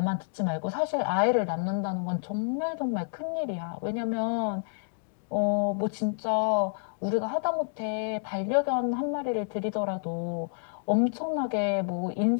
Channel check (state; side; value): silent; right; digital silence